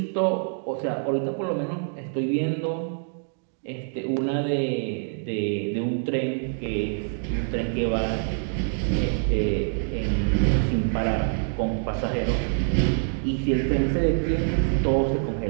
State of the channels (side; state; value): left; silent; digital silence